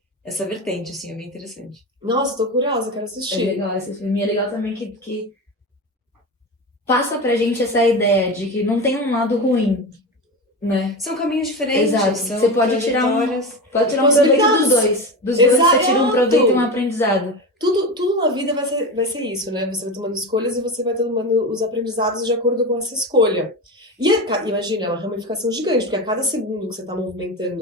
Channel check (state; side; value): normal; both; correlation 0.23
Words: essa vertente, assim, é bem interessante. Nossa, tô curiosa, quero É assistir. legal esse filme. É legal também que passa pra gente essa ideia de que não tem um lado ruim, né? São caminhos diferentes. Exato. São Você pode tirar um proveito Possibilidades. dos dois. Dos dois você tira um proveito e um aprendizado. Tudo na vida vai ser isso, né? Você vai tomando escolhas e você vai tomando os aprendizados de acordo com essa escolha. E imagina, é uma ramificação gigante, porque a cada segundo que você tá